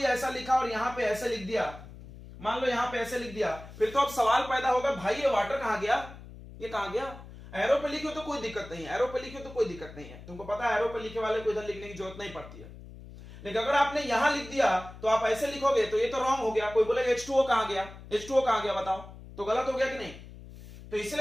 ऐसा लिखा और यहां पे ऐसे लिख दिया, मान लो यहां पे ऐसे लिख दिया, फिर तो अब सवाल पैदा होगा भाई ये वाटर कहां गया, ये कहां गया? एरो पे लिखे तो कोई दिक्कत नहीं है, एरो पे लिखे तो कोई दिक्कत नहीं है, तुमको पता है एरो पे लिखे वाले को इधर लिखने की जरूरत नहीं पड़ती है। लेकिन अगर आपने यहां लिख दिया तो आप ऐसे लिखोगे तो ये तो रॉन्ग हो गया, कोई बोले H2O कहां गया, H2O कहां गया बताओ, तो गलत हो गया कि नहीं? तो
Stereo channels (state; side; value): noise; left; hum, 16 dB below the sound